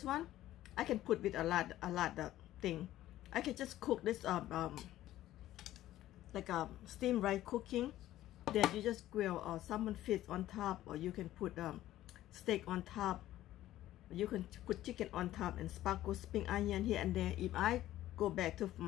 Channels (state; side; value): quieter; right; 14.2 dB